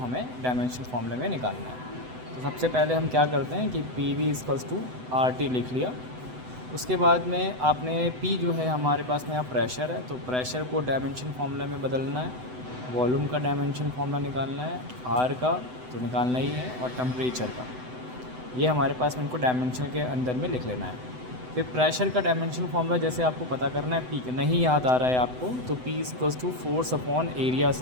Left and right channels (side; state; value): left; late; 7.9 ms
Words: डायमेंशनल फार्मूले में निकालना है। तो सबसे पहले हम क्या करते हैं कि P V equals to R T लिख लिया। उसके बाद में आपने P जो है हमारे पास में यहाँ प्रेशर है, तो प्रेशर को डायमेंशन फार्मूला में बदलना है। वॉल्यूम का डायमेंशन फार्मूला निकालना है, R का तो निकालना ही है, और टेम्परेचर का, ये हमारे पास में इनको डायमेंशन के अंदर में लिख लेना है। फिर प्रेशर का डायमेंशन फार्मूला जैसे आपको पता करना है, P नहीं याद आ रहा है आपको, तो P equals to force upon area